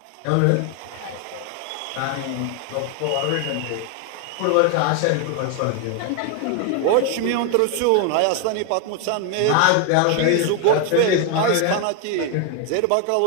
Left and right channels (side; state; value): both; different; correlation 0.01